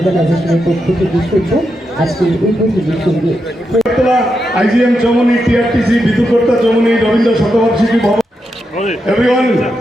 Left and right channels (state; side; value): normal; both; correlation 0.85